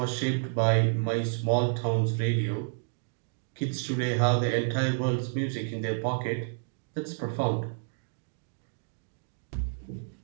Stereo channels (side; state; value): left; silent; digital silence